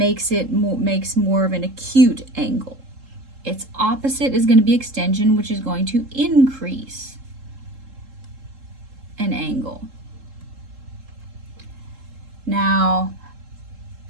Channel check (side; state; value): left; late; 3.7 ms